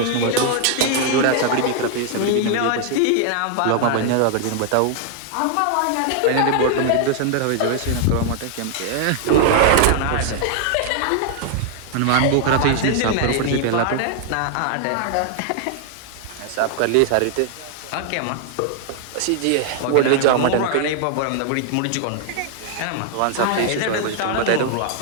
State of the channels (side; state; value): both; different; correlation 0.00